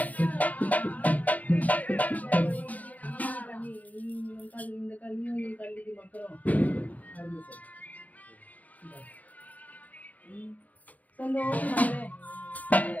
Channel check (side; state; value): right; late; 0.077 ms